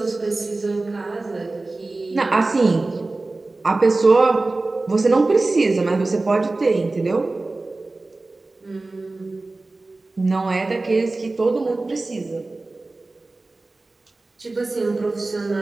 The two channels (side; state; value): left; quieter; 3.2 dB